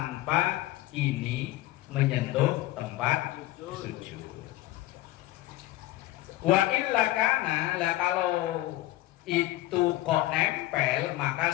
ini menyentuh tempat sujud. Wa illa kana, lah kalau itu kok nempel, maka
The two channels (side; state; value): right; quieter; 16.6 dB